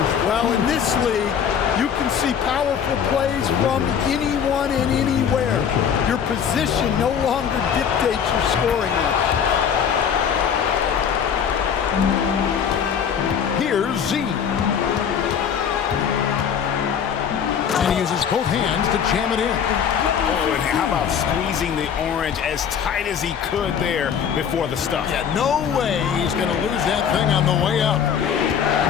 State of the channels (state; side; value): quieter; right; 7.8 dB